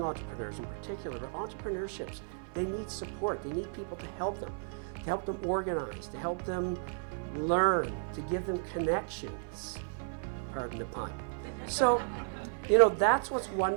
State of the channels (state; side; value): silent; left; 55 dB below the other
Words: entrepreneurs in particular, but entrepreneurships, they need support. They need people to help them organize, to help them learn, to give them connections, pardon the pun. So, that's what's